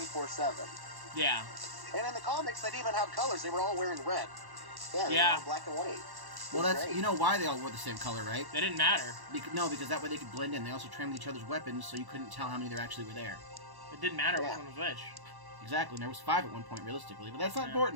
Yeah. And in the comics, they didn't even have colors. They were all wearing red. Yeah, they Yeah. were all black and white. Well, that's, Great. you know why they all wore the same color, right? They didn't matter. No, because that way they could blend in. They also trimmed each other's weapons, so you couldn't tell how many there actually were there. It didn't matter Yeah. which one was which. Exactly, and there was 5 at one point, realistically. But that's not Yeah.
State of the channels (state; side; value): late; left; 1.1 ms